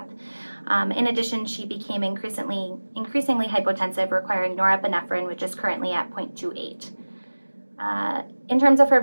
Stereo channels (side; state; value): both; inverted; correlation -1.00